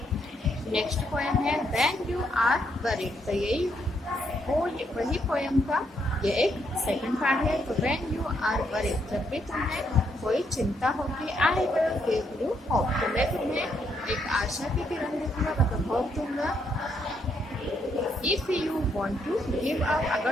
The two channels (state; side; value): normal; both; correlation 0.75